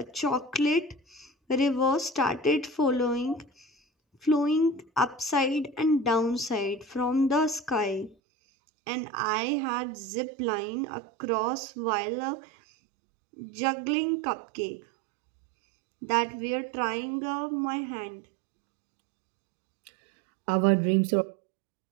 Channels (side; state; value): left; drops out; at 8.2 s